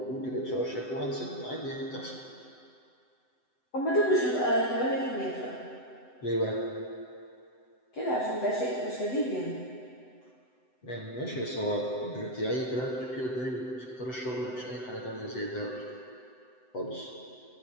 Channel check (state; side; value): late; right; 7.9 ms